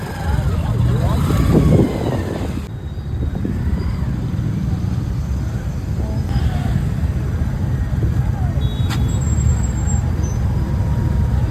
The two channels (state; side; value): identical; both; correlation 1.00